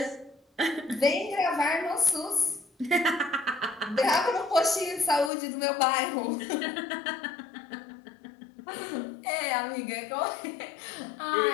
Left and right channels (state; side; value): drops out; right; at 5.3 s